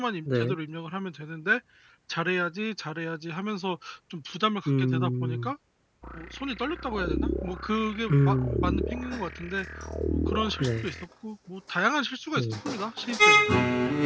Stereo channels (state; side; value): identical; both; correlation 1.00